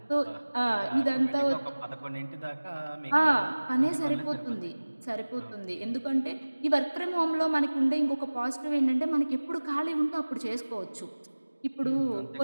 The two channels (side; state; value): both; inverted; correlation -1.00